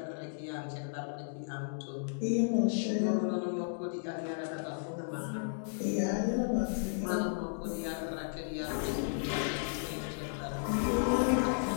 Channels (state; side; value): silent; right; digital silence